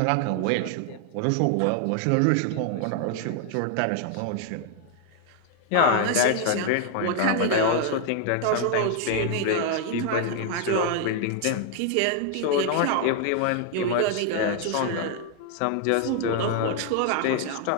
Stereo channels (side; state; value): both; different; correlation 0.00